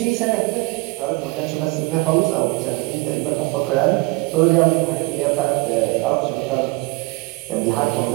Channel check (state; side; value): quieter; left; 24.6 dB